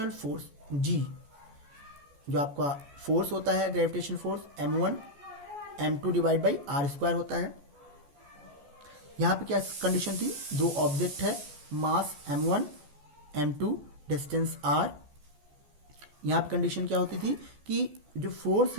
फोर्स जी, जो आपका फोर्स होता है gravitational force m1 m2 divide by r square होता है। यहाँ पे क्या कंडीशन थी, दो ऑब्जेक्ट है, मास m1 m2 डिस्टेंस r। यहाँ पे कंडीशन क्या होती थी कि जो फोर्स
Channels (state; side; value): late; left; 14 ms